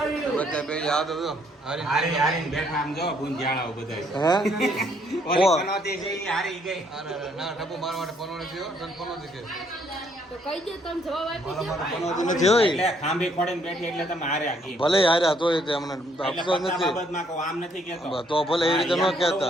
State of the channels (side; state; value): both; normal; correlation 0.68